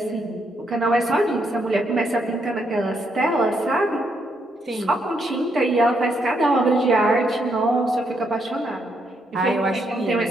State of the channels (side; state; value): both; normal; correlation 0.76